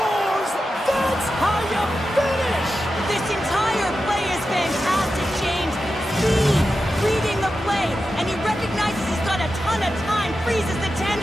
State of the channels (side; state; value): both; normal; correlation 0.91